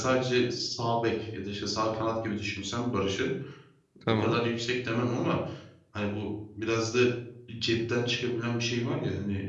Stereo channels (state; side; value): identical; both; correlation 1.00